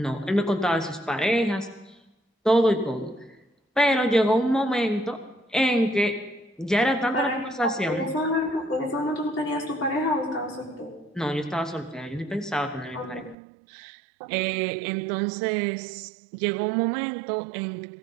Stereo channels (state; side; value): drops out; left; at 13.4 s